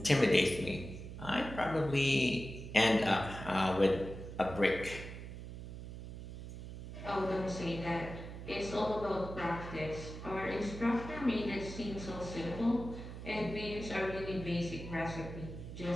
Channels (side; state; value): right; noise; hum, 10 dB below the sound